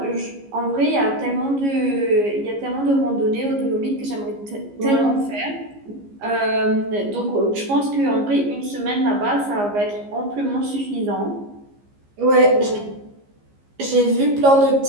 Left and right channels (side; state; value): left; late; 15 ms